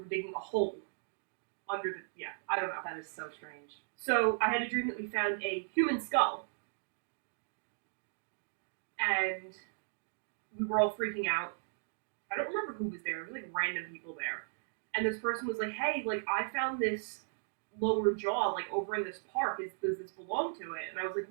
digging a hole under the, I don't know. That is so strange. So, I had a dream that we found a human skull. And we were all freaking out. I don't remember who was there. It was random people there. And this person was like, hey, I found this lower jaw, over in this park. Does this belong to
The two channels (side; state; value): left; silent; digital silence